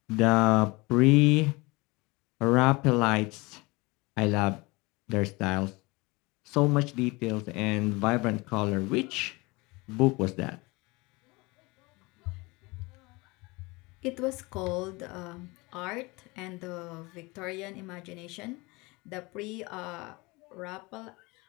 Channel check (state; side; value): quieter; right; 24.7 dB